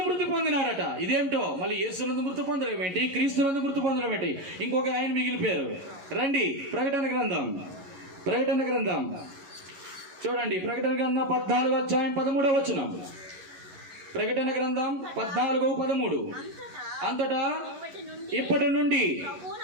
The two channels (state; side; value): late; left; 11 ms